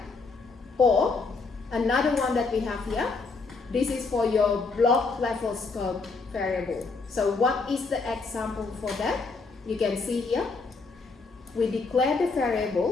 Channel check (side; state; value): right; quieter; 4.2 dB